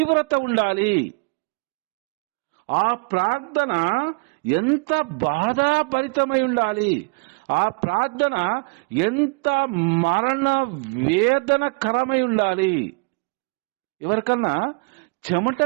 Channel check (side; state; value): left; quieter; 31.9 dB